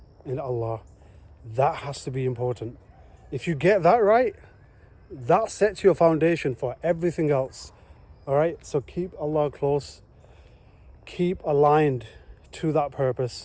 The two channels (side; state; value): both; identical; correlation 1.00